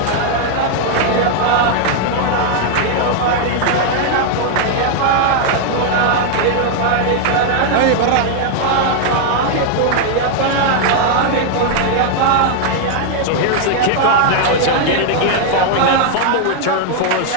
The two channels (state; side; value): different; both; correlation 0.00